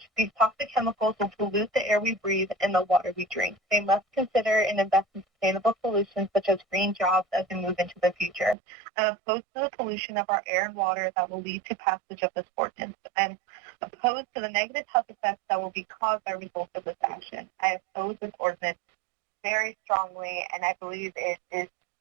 These toxic chemicals will pollute the air we breathe and the water we drink. They must consider and invest in sustainable solutions such as green jobs as we move into the future. I'm opposed to the pollution of our air and water that will lead to passage of this ordinance. I'm opposed to the negative health effects that will be caused by results of this action. I oppose this ordinance very strongly, and I believe it is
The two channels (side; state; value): left; drops out; at 8.6 s